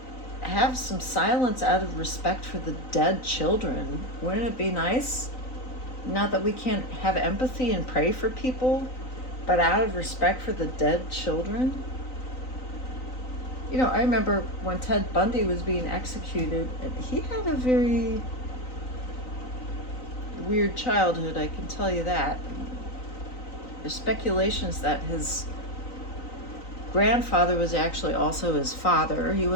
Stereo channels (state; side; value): late; right; 3.9 ms